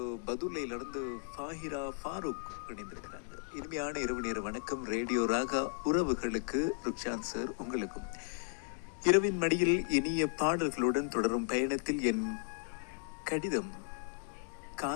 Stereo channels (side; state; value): right; silent; 54 dB below the other